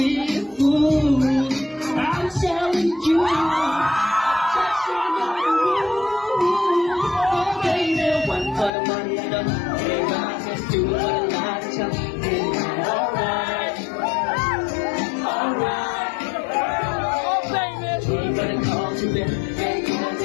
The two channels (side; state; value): right; drops out; at 8.7 s